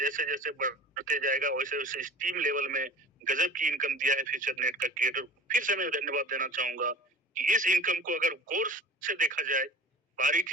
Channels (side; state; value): both; normal; correlation 0.41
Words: जैसे बढ़ते जाएगा वैसे वैसे इस टीम लेवल में गजब की इनकम दिया है फ्यूचर नेट का क्रिएटर। फिर से मैं धन्यवाद देना चाहूंगा कि इस इनकम को अगर गौर से देखा जाए,